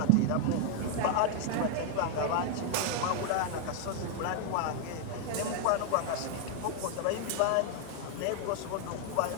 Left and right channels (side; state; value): both; different; correlation 0.00